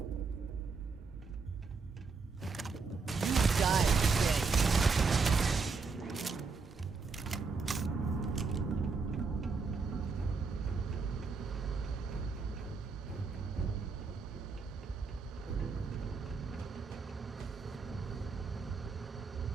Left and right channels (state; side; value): quieter; left; 4.7 dB